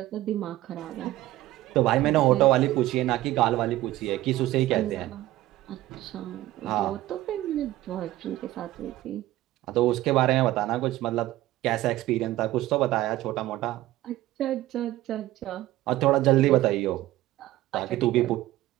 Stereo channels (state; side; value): quieter; left; 15.8 dB